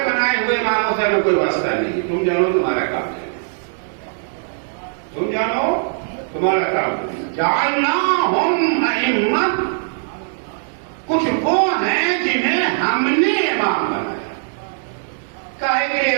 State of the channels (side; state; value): left; silent; digital silence